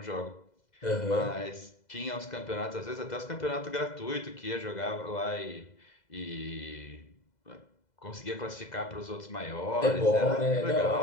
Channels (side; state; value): right; late; 2.0 ms